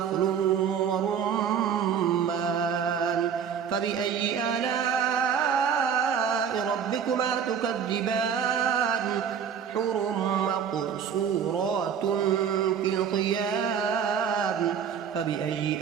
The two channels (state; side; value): quieter; left; 7.7 dB